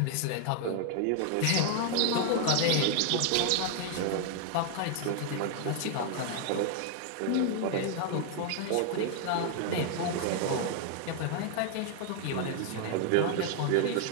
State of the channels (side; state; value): both; different; correlation 0.00